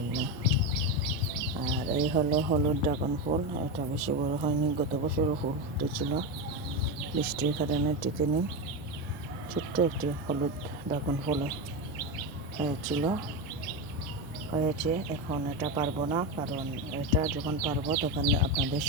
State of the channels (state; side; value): normal; both; correlation 0.15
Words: আর এই হলো হলুদ ড্রাগন ফুল। এটা বেশি বড় হয়নি, গত বছরও ফুল ফুটেছিল, বৃষ্টির কারণে টিকেনি। ছোট্ট একটি হলুদ ড্রাগন ফুল হয়েছে। এখন এটা পারবো না, কারণ এটা যখন পারবো তখন আপনাদের